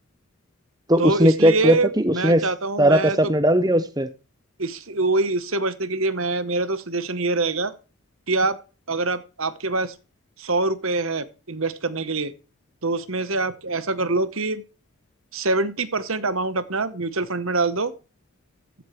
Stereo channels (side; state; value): both; normal; correlation 0.21